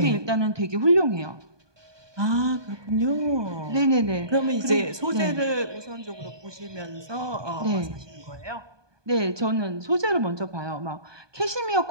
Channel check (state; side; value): late; left; 1.2 ms